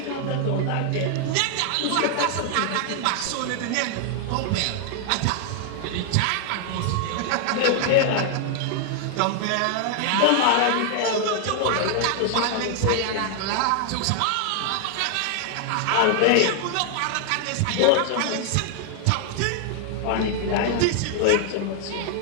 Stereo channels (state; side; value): different; both; correlation 0.00